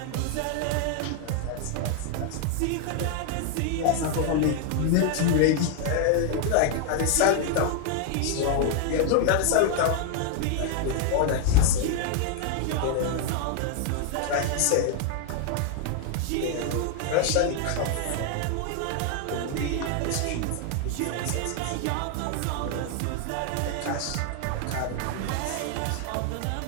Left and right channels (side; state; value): both; different; correlation 0.00